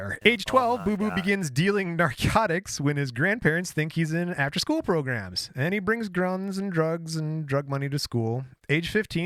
Age 12, Boo Boo begins dealing narcotics when his grandparents think he's in after-school programs. And he brings guns and drugs and drug money to school. Age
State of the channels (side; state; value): both; identical; correlation 1.00